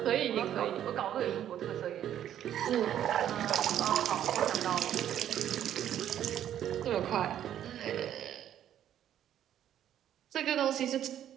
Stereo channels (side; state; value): left; quieter; 10.8 dB